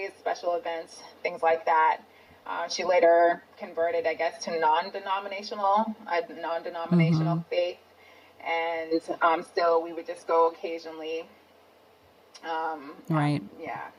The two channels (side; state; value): both; identical; correlation 1.00